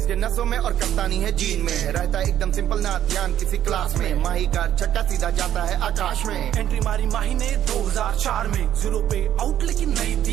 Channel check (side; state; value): left; quieter; 11.2 dB